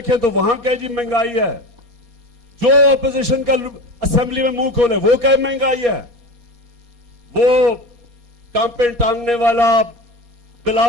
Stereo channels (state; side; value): late; left; 4.2 ms